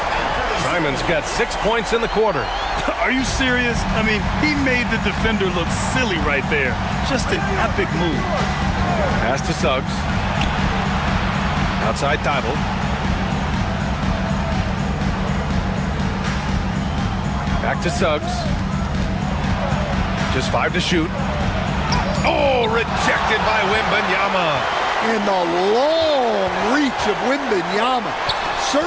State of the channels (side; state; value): both; identical; correlation 1.00